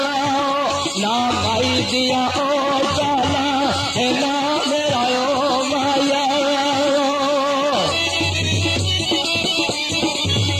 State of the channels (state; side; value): identical; both; correlation 1.00